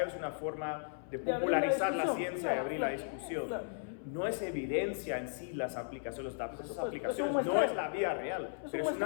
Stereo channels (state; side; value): silent; right; 54 dB below the other